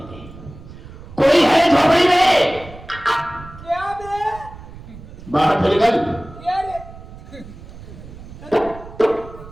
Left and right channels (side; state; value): right; noise; rumble, 16 dB below the sound